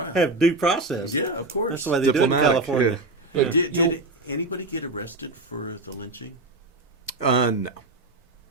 Have due process. Yeah, of course. That's the way they do it in Diplomatic, California. yeah. Yeah. Did anybody get arrested for the lynching? No.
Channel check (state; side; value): quieter; left; 3.0 dB